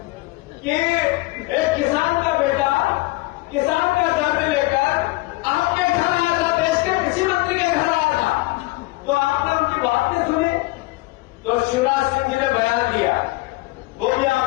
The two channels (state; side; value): quieter; right; 21.3 dB